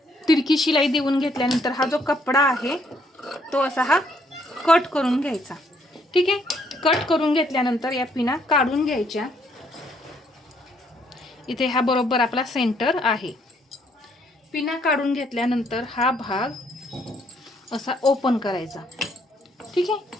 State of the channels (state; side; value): normal; both; correlation 0.69